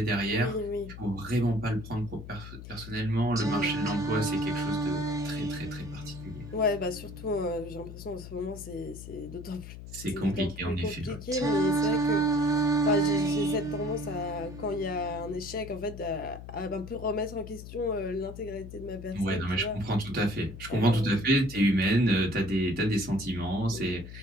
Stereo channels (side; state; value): left; noise; hum, 12 dB below the sound